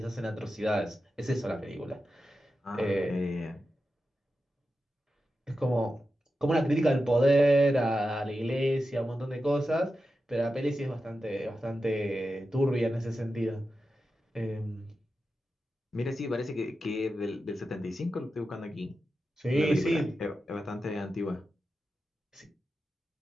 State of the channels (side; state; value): both; normal; correlation 0.91